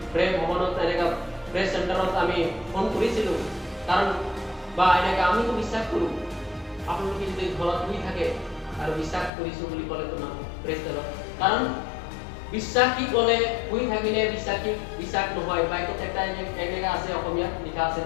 প্ৰেম ভৱনত তেনেকা প্ৰেছ চেণ্টাৰত আমি ফোন কৰিছিলো। কাৰণ বা এনেকা আমিতো বিশ্বাস কৰো। আপোনালোকে যদি ঘৰত শুই থাকে আৰু বিশ্বাস কৰিছো বুলি ক'লে তো নহ'ব। Praise the lord. কাৰণ বিশ্বাসী ক'লে শুই থাকিলে বিশ্বাস নহয়। বাইকত একটা এনেকা আছে, অসমীয়াত লিখা আছে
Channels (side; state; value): right; drops out; at 9.3 s